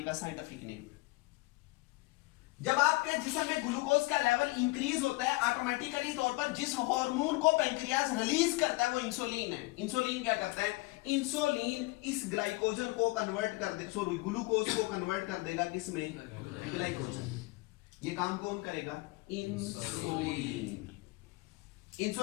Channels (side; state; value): right; quieter; 23.0 dB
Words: का साइंटिफिक नेम है। जब आपके जिस्म में ग्लूकोज का लेवल इंक्रीज होता है, ऑटोमेटिकली तौर पर जिस हार्मोन को पेंक्रियास रिलीज करता है वो इंसुलिन है। इंसुलिन क्या करता है? इंसुलिन इस ग्लाइकोजन को कन्वर्ट कर दे, सॉरी ग्लूकोज को कन्वर्ट कर देगा किसमें? ग्लाइकोजन। ये काम कौन करेगा? इंसुलिन।